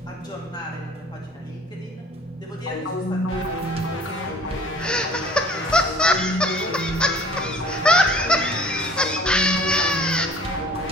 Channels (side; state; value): both; normal; correlation 0.51